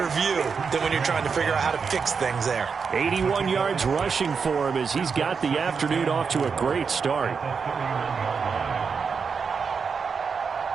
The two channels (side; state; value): left; quieter; 5.7 dB